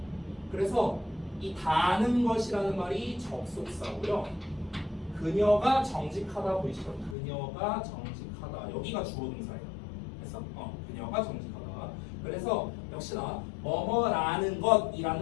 그래서 이 다는 것이라는 말이 접속사고요. 그녀가 정직하다 보이시죠? 그녀가 정직하다. 여기가 주어 동사예요. 그래서 그녀가 정직하다. 그래서 역시나 뭐뭐라는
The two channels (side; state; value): right; drops out; at 7.2 s